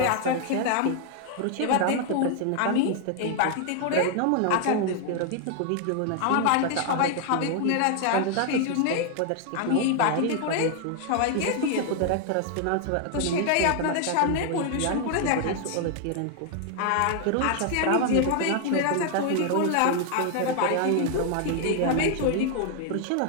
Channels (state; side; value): different; both; correlation 0.00